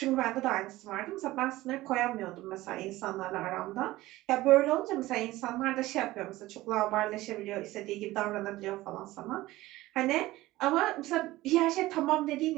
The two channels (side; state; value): left; quieter; 17.6 dB